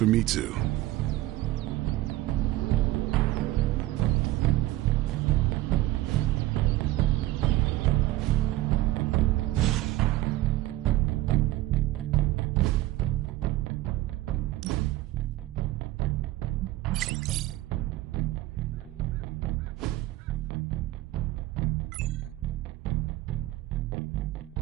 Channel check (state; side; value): quieter; left; 16.5 dB